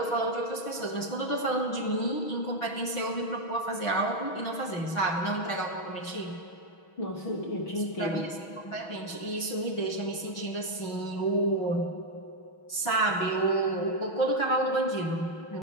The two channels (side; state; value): right; late; 6.2 ms